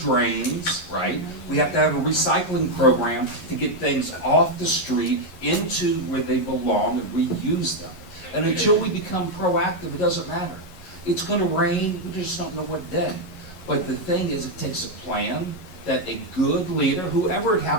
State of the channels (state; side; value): late; right; 11 ms